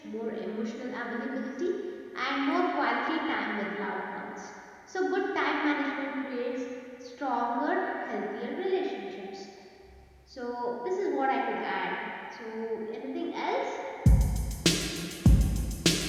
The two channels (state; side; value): identical; both; correlation 1.00